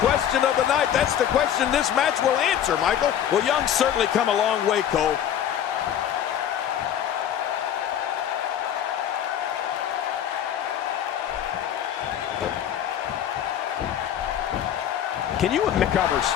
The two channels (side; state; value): right; quieter; 10.0 dB